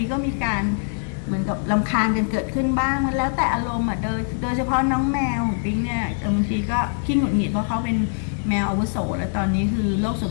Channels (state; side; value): silent; right; digital silence